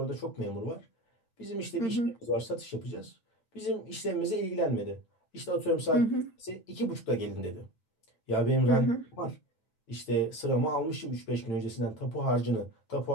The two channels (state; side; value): late; right; 9.0 ms